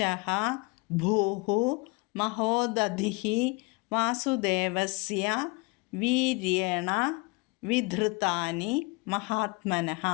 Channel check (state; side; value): quieter; right; 27.8 dB